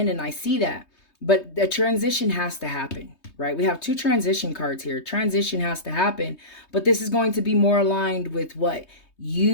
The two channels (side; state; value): right; late; 3.2 ms